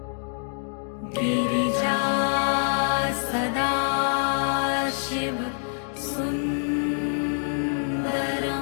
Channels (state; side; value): silent; right; 61 dB below the other